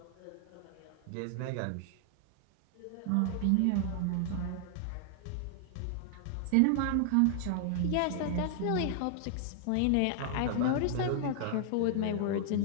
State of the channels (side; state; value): both; different; correlation 0.00